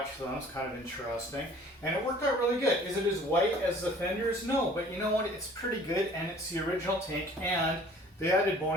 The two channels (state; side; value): normal; both; correlation 0.51